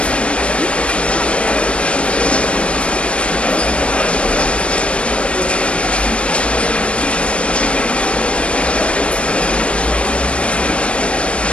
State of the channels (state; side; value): late; right; 0.060 ms